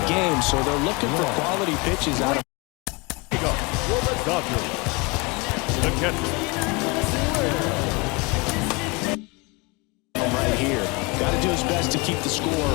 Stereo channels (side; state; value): right; quieter; 27.4 dB